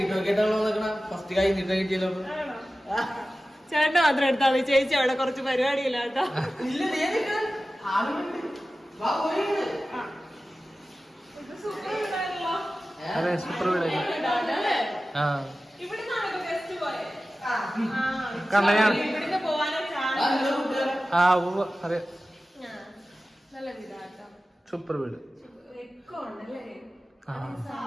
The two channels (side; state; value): both; normal; correlation 0.95